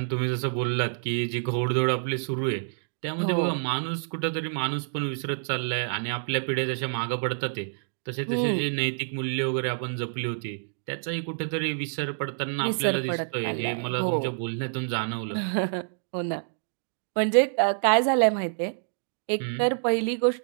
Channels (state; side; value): silent; left; digital silence